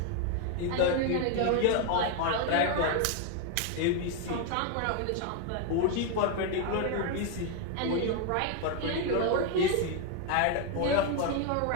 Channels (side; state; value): both; different; correlation 0.01